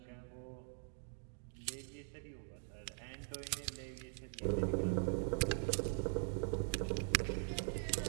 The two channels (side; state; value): left; silent; digital silence